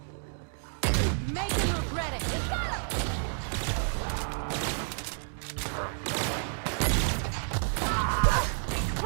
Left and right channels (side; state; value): left; silent; digital silence